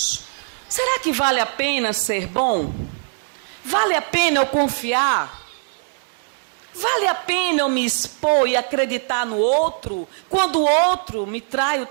Será que vale a pena ser bom? Vale a pena eu confiar? Vale a pena eu me expor e acreditar no outro? Quando o outro me trai o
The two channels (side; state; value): left; silent; digital silence